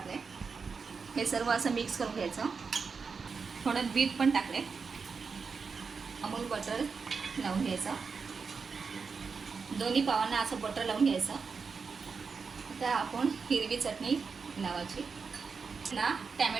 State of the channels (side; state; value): left; quieter; 5.2 dB